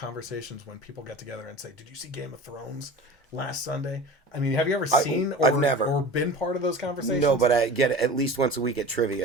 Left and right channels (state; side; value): normal; both; correlation 0.36